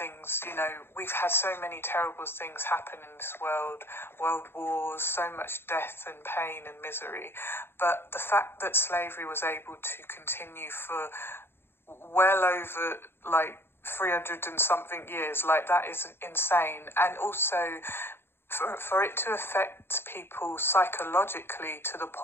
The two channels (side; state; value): right; late; 0.11 ms